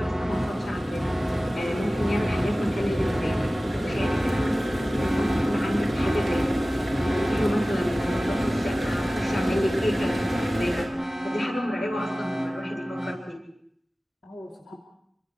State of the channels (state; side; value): normal; both; correlation 0.97